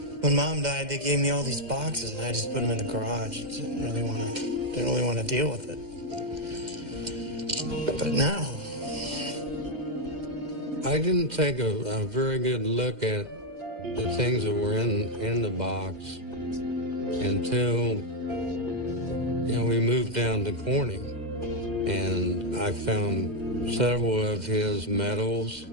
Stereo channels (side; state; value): left; late; 2.1 ms